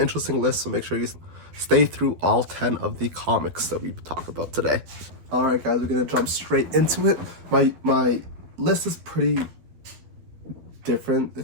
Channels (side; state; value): left; late; 12 ms